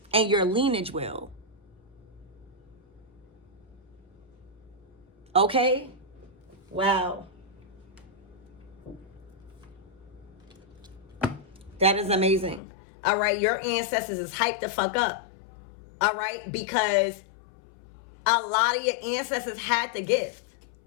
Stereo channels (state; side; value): drops out; right; at 12.6 s